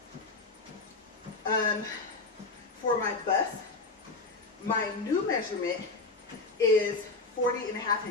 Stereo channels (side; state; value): right; quieter; 3.6 dB